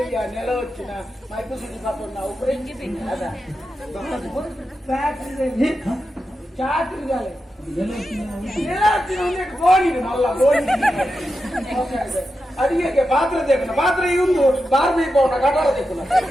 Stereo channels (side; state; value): both; normal; correlation 0.89